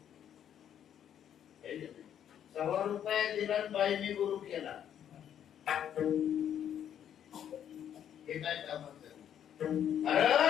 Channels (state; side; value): quieter; right; 9.7 dB